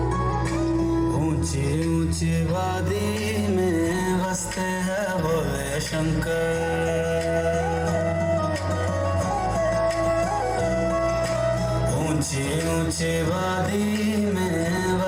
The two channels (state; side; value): identical; both; correlation 1.00